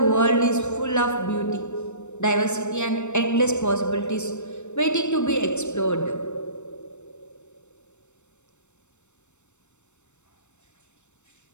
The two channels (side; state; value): right; late; 0.83 ms